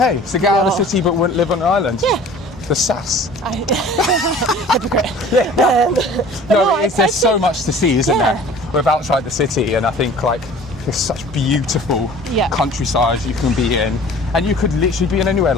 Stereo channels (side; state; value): both; normal; correlation 0.46